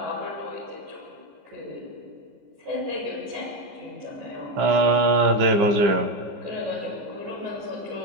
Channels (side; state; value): left; late; 14 ms